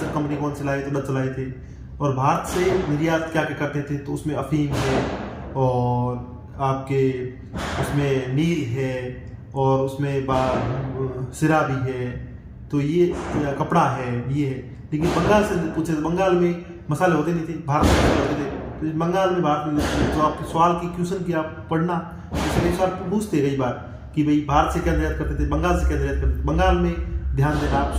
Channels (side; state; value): both; identical; correlation 1.00